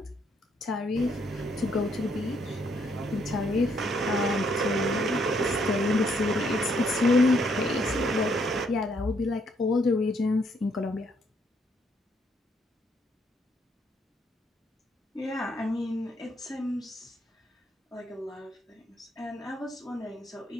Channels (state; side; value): normal; both; correlation 0.71